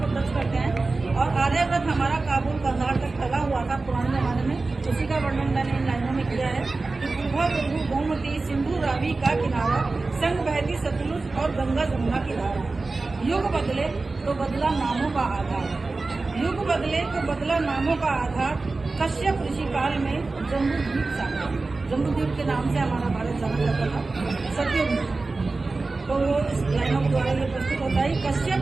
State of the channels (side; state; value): left; quieter; 3.6 dB